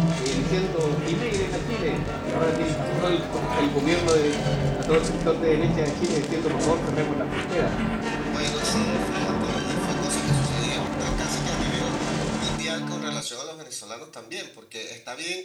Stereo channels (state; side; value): identical; both; correlation 1.00